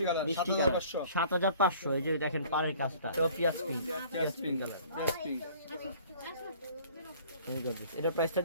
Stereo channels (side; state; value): both; inverted; correlation -0.51